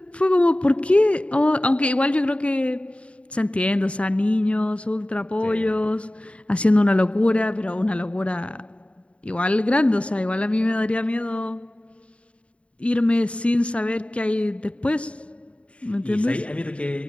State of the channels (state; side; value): late; right; 0.061 ms